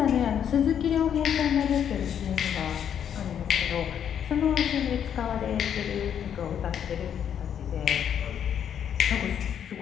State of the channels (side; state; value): right; quieter; 8.8 dB